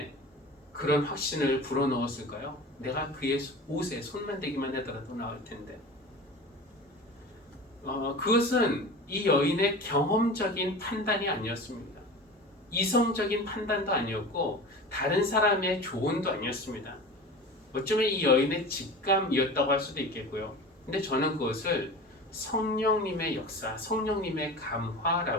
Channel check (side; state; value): both; normal; correlation 0.34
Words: 그런 확신을 불어넣었을까요? 내가 그의 옷에 손만 대기만 하더라도 나을 텐데. 그것은 이 여인의 경험적인 판단이 아니었습니다. 이성적인 판단도 아니었고 다른 사람의 조언도 아니었습니다. 어쩌면 이 여인의 직감이었다고 할 수도 있겠고요. 근데 저는 그것을 성령님의 역사, 성령님의